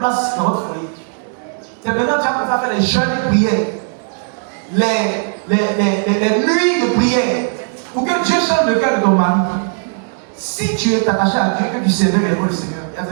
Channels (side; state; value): left; silent; 68 dB below the other